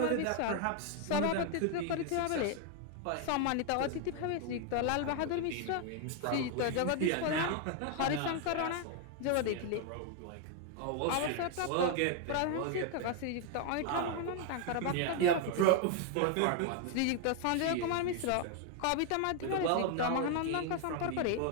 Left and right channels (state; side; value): different; both; correlation 0.00